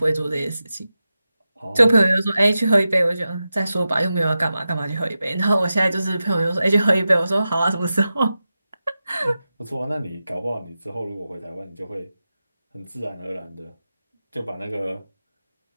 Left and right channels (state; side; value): inverted; both; correlation -0.92